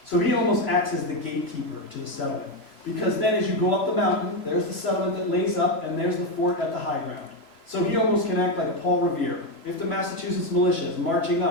So he almost acts as the gatekeeper to the settlement. Because then as you go up the mountain, there's the settlement that lays up, and there's the fort at the high ground. So he almost can act like a Paul Revere. If the Massachusetts militia is marching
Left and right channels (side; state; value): right; late; 3.0 ms